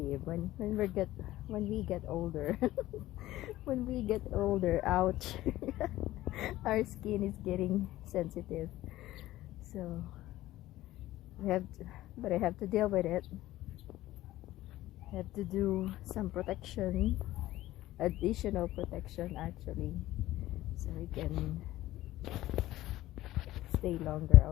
when we get older. When we get older, ouch. Our skin is getting sensitive. So but I have to deal with it. I have to do some protection, additional protection actually, so I can stay longer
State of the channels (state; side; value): quieter; right; 15.7 dB